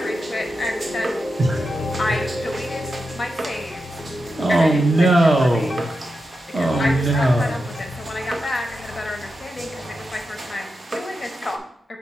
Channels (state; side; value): normal; both; correlation 0.89